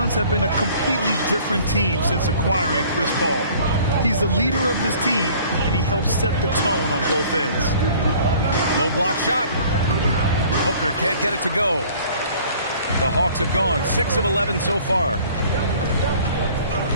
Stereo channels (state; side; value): inverted; both; correlation -0.52